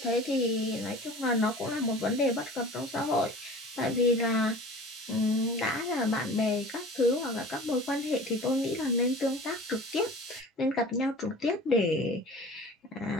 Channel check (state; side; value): normal; both; correlation 0.41